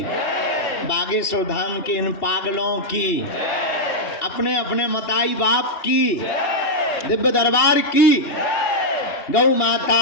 बागेश्वर धाम के इन पागलों की, अपने अपने मताई बाप की, दिव्य दरबार की, गौ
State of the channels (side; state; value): right; late; 2.8 ms